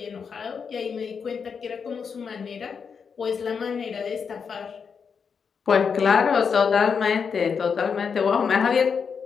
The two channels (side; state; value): right; quieter; 6.2 dB